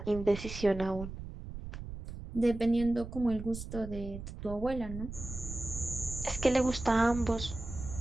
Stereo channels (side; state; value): right; noise; rumble, 10 dB below the sound